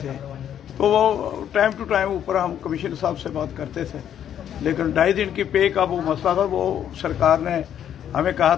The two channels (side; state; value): right; quieter; 9.8 dB